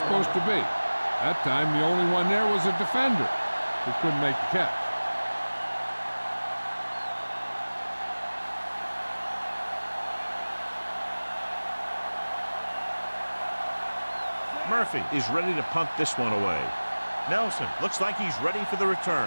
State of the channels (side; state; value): both; inverted; correlation -1.00